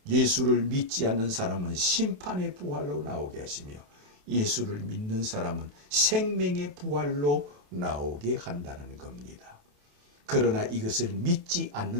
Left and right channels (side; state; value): left; late; 28 ms